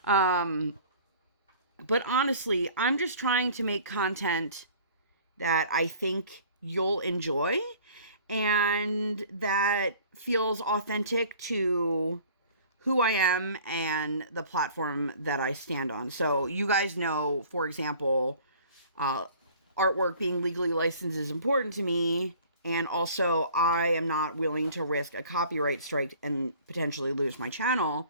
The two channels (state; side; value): inverted; both; correlation -0.49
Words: But honestly, I'm just trying to make content that I think you'll enjoy and that feels authentic to who I am and the platform that I stand on. So you guys know, for example, artwork being legally licensed is important to me. And also, I am not willing to risk a copyright strike and potentially lose my